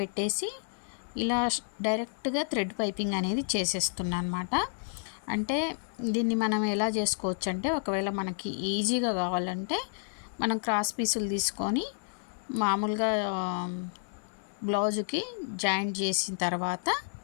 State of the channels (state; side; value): silent; right; digital silence